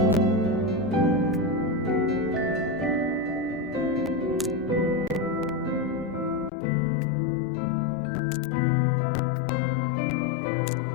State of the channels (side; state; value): right; drops out; at 6.5 s